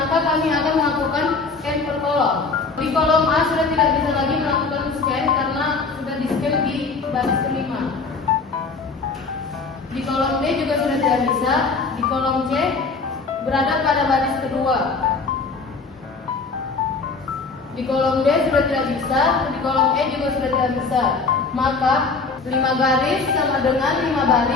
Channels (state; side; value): quieter; right; 4.3 dB